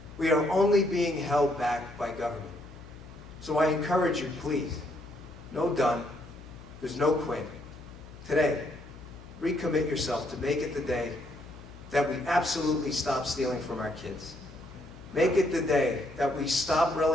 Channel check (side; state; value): left; noise; hum, 17 dB below the sound